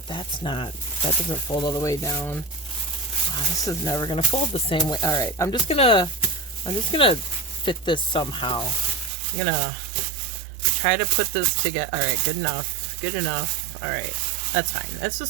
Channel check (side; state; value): left; drops out; at 9.1 s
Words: that doesn't fold all the way down. Oh, this is never gonna fold the same way. All right, I'm just gonna fit this somehow. I'm gonna try to put this together. All right, good enough. All right, that's fine. That's